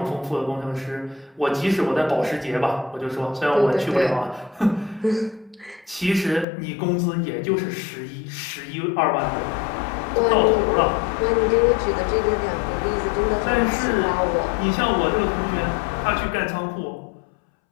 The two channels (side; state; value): right; drops out; at 6.5 s